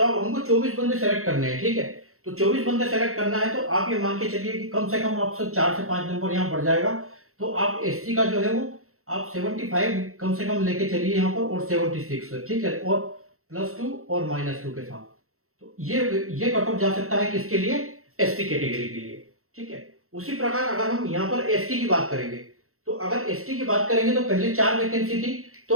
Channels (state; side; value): late; left; 0.63 ms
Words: अब हमको 24 बंदे सेलेक्ट करने हैं। ठीक है, तो 24 बंदे सेलेक्ट करना है, तो आप ये मान के चलिए कि कम से कम आपसे 4 से 5 नंबर यहाँ बढ़ जाएगा। तो आप एससी का जो है वो आप 75 कम से कम लेके चलिए यहाँ पर, और 76। ठीक है, और +2 और -2 के साथ, तो ये कट ऑफ जा सकता है किसके लिए, एसटी कैटेगरी के लिए। ठीक है, उसी प्रकार अगर हम यहाँ पर एसटी की बात करेंगे, तो अगर एसटी की बात करेंगे तो पहले 4 वैकेंसी थी,